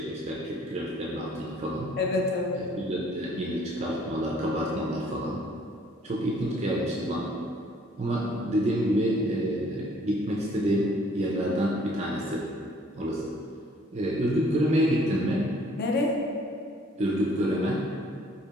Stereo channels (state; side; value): normal; both; correlation 0.59